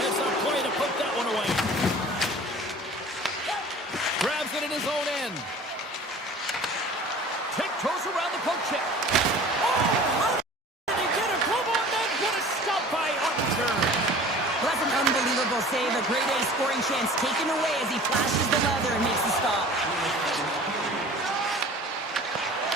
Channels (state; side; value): normal; both; correlation 0.44